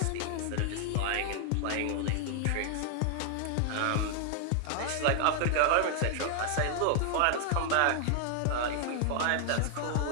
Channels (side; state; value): both; different; correlation 0.00